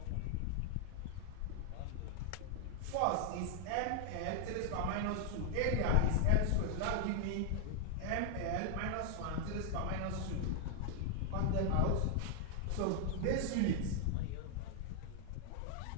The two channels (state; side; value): different; both; correlation 0.00